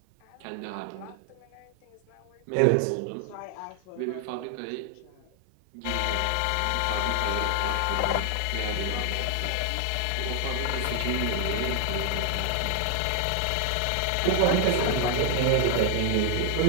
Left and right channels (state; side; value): different; both; correlation 0.00